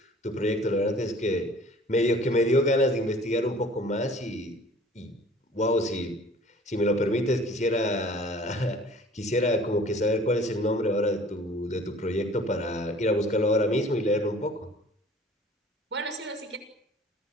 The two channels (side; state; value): both; normal; correlation 0.50